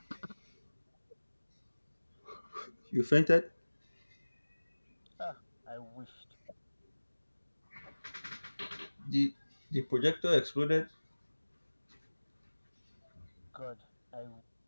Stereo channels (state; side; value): inverted; both; correlation -1.00